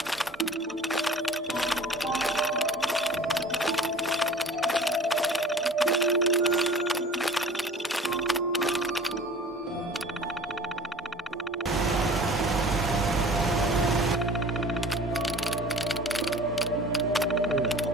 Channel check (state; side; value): normal; both; correlation 0.44